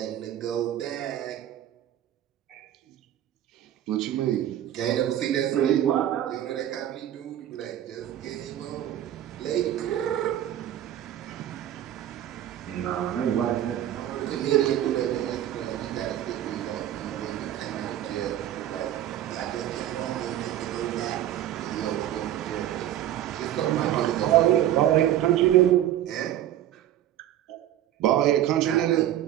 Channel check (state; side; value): quieter; left; 12.1 dB